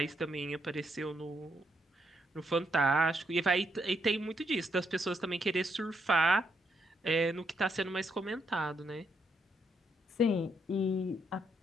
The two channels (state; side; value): normal; both; correlation 0.76